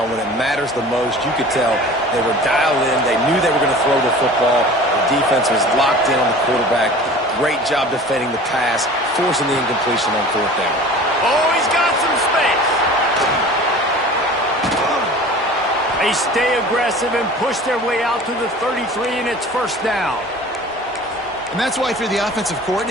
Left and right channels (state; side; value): normal; both; correlation 0.41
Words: when it matters the most. You could tell they were dialed in. They knew they were going to throw the football. The defense was locked in on the quarterback. Great job defending the pass, forcing the incompletion on fourth down. Oh, he's got some space. They stay aggressive and push their way out to the 33, and it's first down. And that's why if you're the offensive